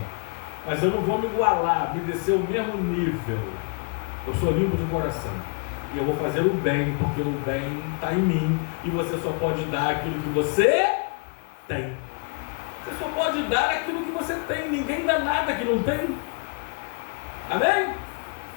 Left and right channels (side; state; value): right; quieter; 37.2 dB